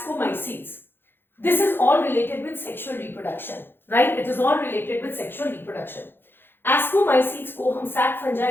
This is all related with sexual reproduction, right? It is all related with sexual reproduction. Ascomycetes को हम sac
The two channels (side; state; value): right; late; 0.10 ms